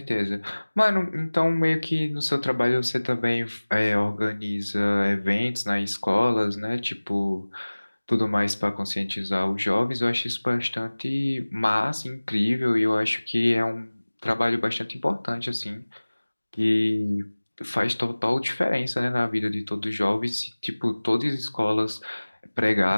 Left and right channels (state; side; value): inverted; both; correlation -1.00